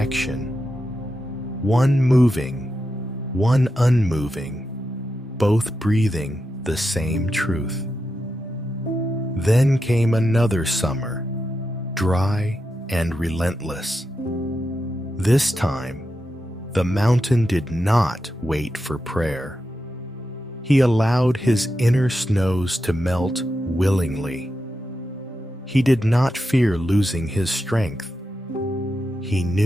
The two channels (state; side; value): normal; both; correlation 0.88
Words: one moving, one unmoving, both breathing the same truth. Then came another summer, dry and relentless. This time, the mountain did not wait for prayer. He allowed his inner snows to melt willingly. He did not fear losing his strength. He